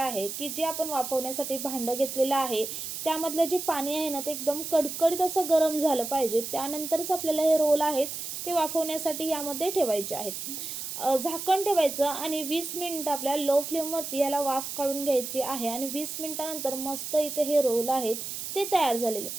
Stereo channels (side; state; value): right; noise; hiss, 6 dB below the sound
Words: की जे आपण वाफवण्यासाठी भांडं घेतलेलं आहे त्यामधलं जे पाणी आहे ना ते एकदम कडकडीत असं गरम झालं पाहिजे. त्यानंतरच आपल्याला हे रोल आहेत ते वाफवण्यासाठी यामध्ये ठेवायचे आहेत. झाकण ठेवायचं आणि 20 मिनिटं आपल्याला लो फ्लेमवरती याला वाफ काढून घ्यायची आहे आणि 20 मिनिटानंतर मस्त इथे हे रोल आहेत ते तयार झालेले.